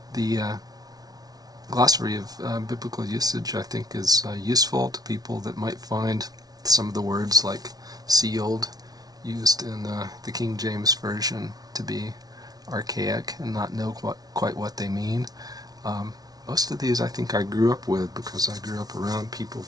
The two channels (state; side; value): late; left; 0.19 ms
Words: The glossary of biblical usage, I think, is useful to people that might find some of the words like sealed used in the King James Version to be archaic and not know quite what they mean. Most of these I think I grew up with because I grew up around people